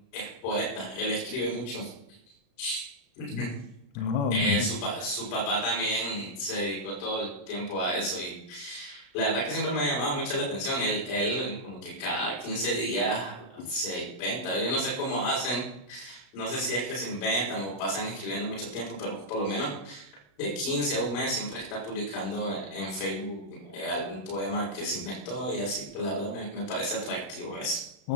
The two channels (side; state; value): right; late; 35 ms